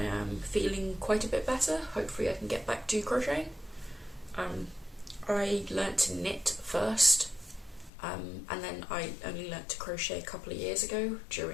am feeling quite a bit better, hopefully I can get back to crocheting. I learnt to knit first, and then I only learnt to crochet a couple of years ago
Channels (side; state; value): right; drops out; at 7.9 s